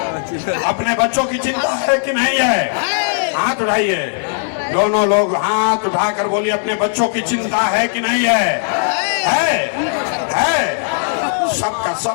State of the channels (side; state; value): right; silent; 68 dB below the other